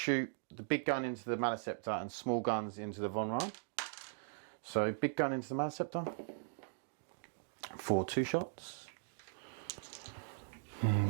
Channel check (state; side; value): silent; left; digital silence